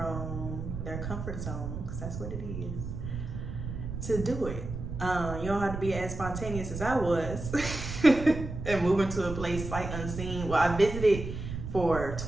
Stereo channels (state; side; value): noise; right; rumble, 7 dB below the sound